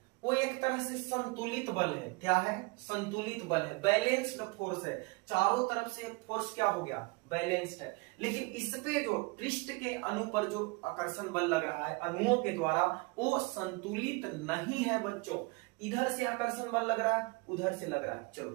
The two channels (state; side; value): quieter; left; 27.4 dB